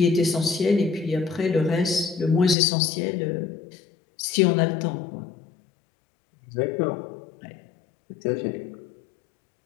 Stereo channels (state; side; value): drops out; right; at 2.6 s